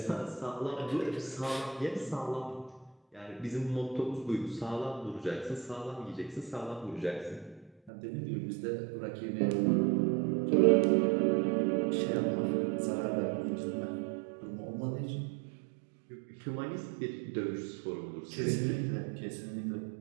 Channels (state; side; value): drops out; left; at 7.9 s